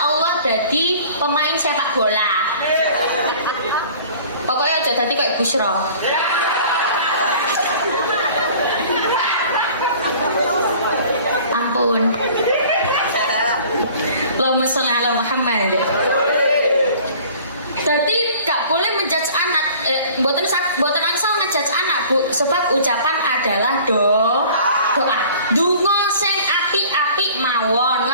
Allah jadi pemain sepak bola. Pokoknya aja tadi kayak Busra. ampun. Allahumma sholli ala Muhammad. Jadi gak boleh menjudge anak, boten angsal ngejudge anak Bu, sebab ucapan adalah doa. Donga sing apik-apik mawon,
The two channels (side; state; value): both; inverted; correlation -0.48